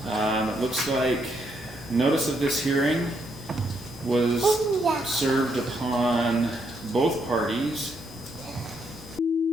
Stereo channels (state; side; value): normal; both; correlation 0.76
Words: It looks like notice of this hearing was served upon both parties.